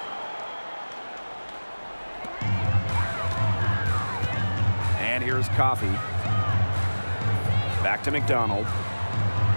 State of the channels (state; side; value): inverted; both; correlation -1.00